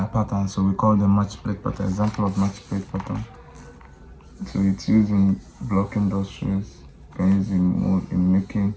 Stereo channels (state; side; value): identical; both; correlation 1.00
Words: patterns, so we call them match plate pattern. Example of match plate pattern. So it's used in block industries. You can use in making.